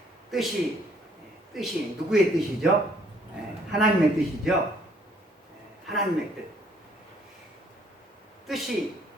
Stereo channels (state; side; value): normal; both; correlation 0.64